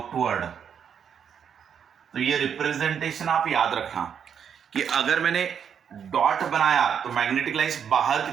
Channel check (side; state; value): left; quieter; 7.8 dB